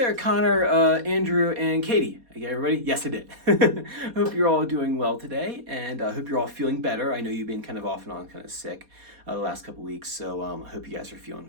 Connor, Andrew, and Katie. I get everybody? Yes, I did. Hope you're all doing well today, and hope you're all feeling better. I know you've been kind of off and on, kind of sick the last couple weeks, so I hope you guys are feeling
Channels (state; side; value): late; left; 4.2 ms